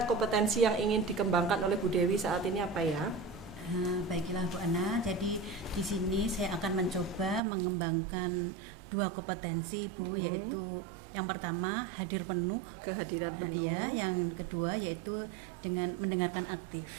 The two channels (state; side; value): drops out; left; at 7.4 s